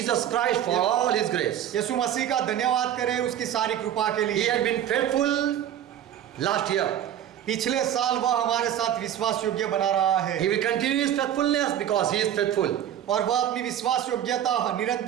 Christ for all His grace. यीशु मसीह का धन्यवाद करें उसकी सारी कृपा के He लिए। had been faithful last year. पिछले साल वह हमारे साथ विश्वास योग्य बना रहा है। He will continue His faithfulness because He is faithful. और वह अपनी विश्वास योग्यता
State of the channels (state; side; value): quieter; left; 10.6 dB